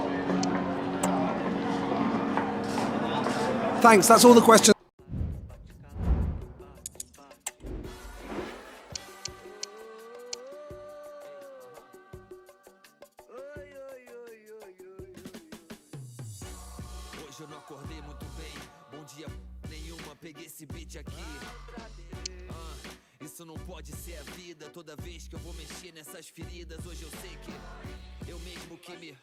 Thanks, that's all the questions. Hoje eu não acordei muito bem. Bom dia nenhuma, peguei esse beat aqui. Isso não pode ser a vida. Toda vez que eu vou mexer nessas feridas, hoje eu sei que eu mesmo que me...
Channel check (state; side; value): identical; both; correlation 1.00